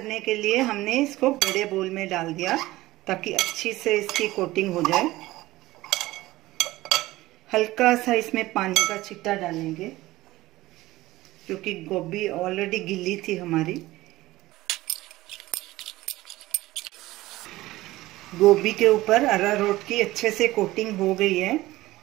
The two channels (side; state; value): left; quieter; 17.7 dB